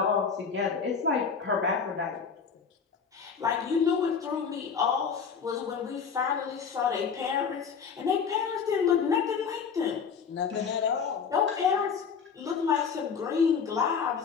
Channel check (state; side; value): quieter; right; 6.2 dB